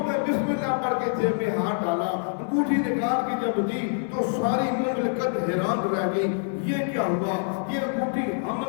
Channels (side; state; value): right; silent; 61 dB below the other